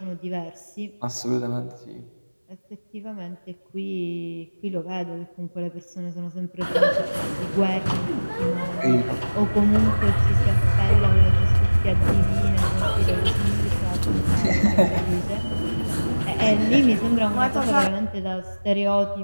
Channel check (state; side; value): inverted; both; correlation -1.00